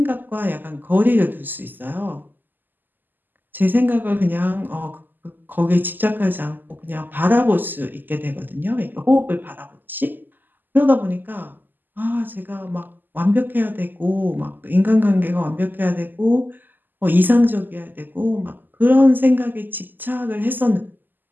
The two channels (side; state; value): left; late; 0.089 ms